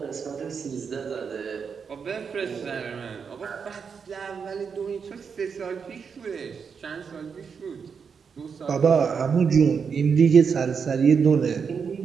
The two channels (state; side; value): quieter; left; 6.2 dB